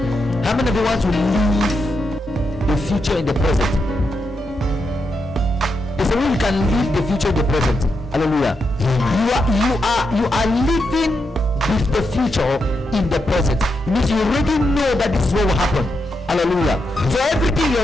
How many of you want to live the future in the present? There's a way you can live the future in the present. Hallelujah. You are living with the future in the present. It means you already know that this is what will happen. Hallelujah. So everything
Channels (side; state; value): both; normal; correlation 0.84